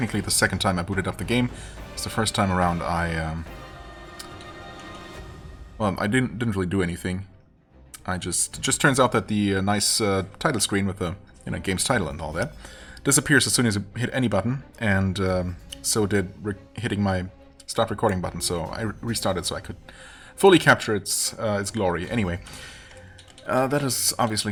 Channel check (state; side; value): identical; both; correlation 1.00